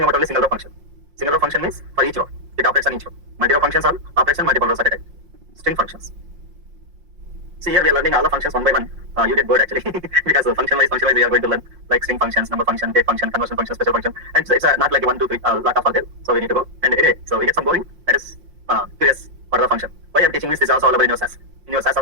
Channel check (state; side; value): late; left; 5.7 ms